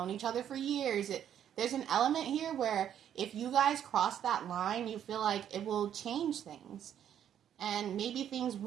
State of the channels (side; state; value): left; quieter; 9.8 dB